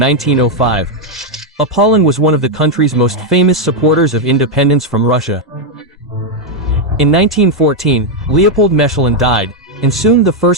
Polan was one of the country's most famous supporters of independence from Russia. In 1914, Leopold Mechelin died, and soon the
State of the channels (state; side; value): normal; both; correlation 0.01